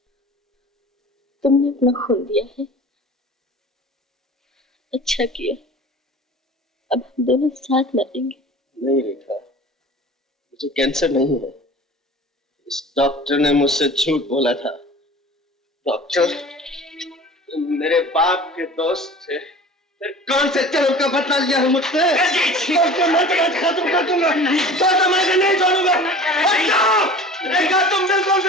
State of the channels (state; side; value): normal; both; correlation 0.41